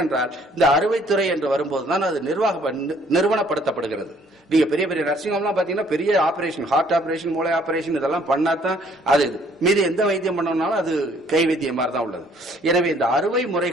இந்த அறுவைத்துறை என்று வரும்போதுதான் அது நிறுவனப்படுத்தப்படுகிறது. நீங்க பெரிய பெரிய நர்சிங் ஹோம்லாம் பாத்தீங்கன்னா பெரிய ஆபரேஷன், ஹார்ட் ஆபரேஷன், மூளை ஆபரேஷன் இதெல்லாம் பண்ணாதான் அது மீது எந்த வைத்தியம் பண்ணோம்னாலும் அது கை வைத்தியம் மாதிரி தான் உள்ளது. எனவே இந்த அறுவை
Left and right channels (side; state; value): both; normal; correlation 0.61